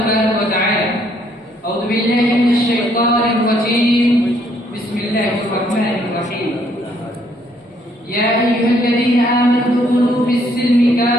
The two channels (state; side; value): normal; both; correlation 0.68